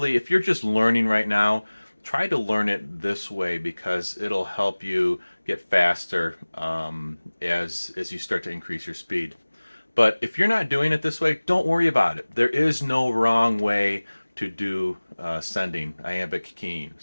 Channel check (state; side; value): inverted; both; correlation -1.00